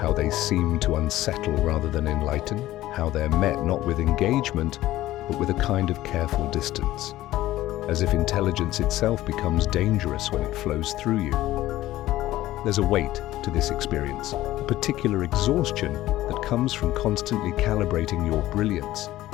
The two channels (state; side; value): quieter; right; 15.4 dB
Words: they seem to unsettle rather than enlighten, how they're met not with engagement, but with a kind of careful distance, as if intelligence itself becomes dangerous when it flows through you. There's a weight to this experience, a particular exhaustion that comes from constantly calibrating your brilliance,